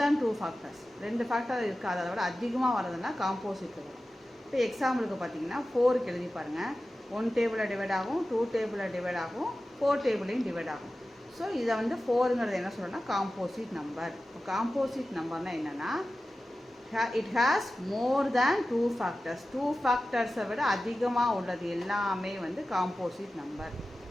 தேன் 2 ஃபேக்டர்ஸ். 2 ஃபேக்டர் இருக்குது. அதை விட அதிகமாக வரதுன்னா காம்போசிட் வரும். இப்போ எக்ஸாம்பிளுக்கு பார்த்தீங்கன்னா 4க்கு எழுதி பாருங்கள். 1 டேபிளில் டிவைட் ஆகும், 2 டேபிளில் டிவைட் ஆகும், 4 டேபிளையும் டிவைட் ஆகும். ஸோ இதை வந்து 4ங்கிறது என்ன சொல்கிறோன்னா காம்போசிட் நம்பர். இப்போ காம்போசிட் நம்பர்னால் என்னென்னா it has more than 2 factors. 2 ஃபேக்டர்ஸை விட அதிகமாக உள்ளது எல்லாமே வந்து காம்போசிட் நம்பர்.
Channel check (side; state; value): both; normal; correlation 0.95